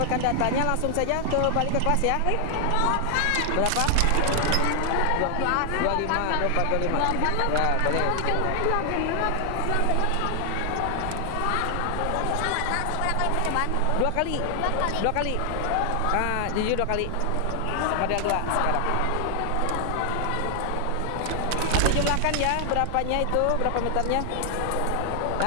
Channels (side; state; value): both; different; correlation 0.00